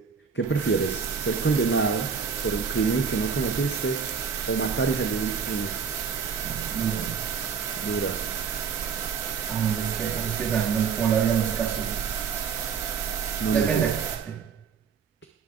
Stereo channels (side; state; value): left; quieter; 6.2 dB